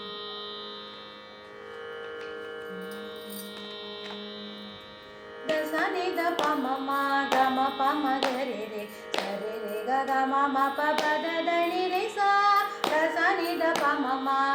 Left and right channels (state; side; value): identical; both; correlation 1.00